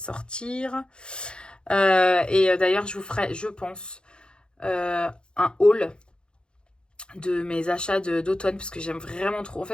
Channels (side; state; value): right; late; 0.051 ms